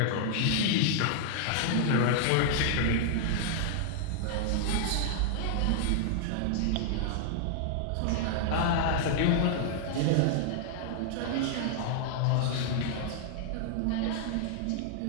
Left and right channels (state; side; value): different; both; correlation -0.01